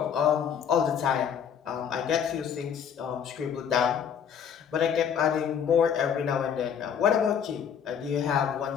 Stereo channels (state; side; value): quieter; right; 7.9 dB